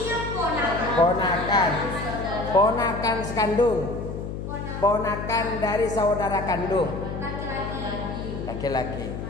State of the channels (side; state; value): left; noise; hum, 6 dB below the sound